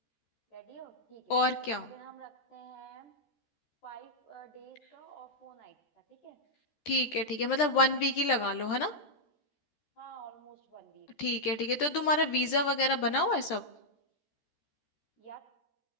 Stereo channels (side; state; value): right; late; 14 ms